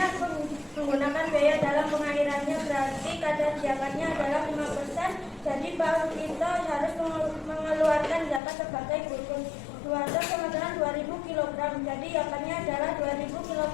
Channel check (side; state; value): right; drops out; at 8.4 s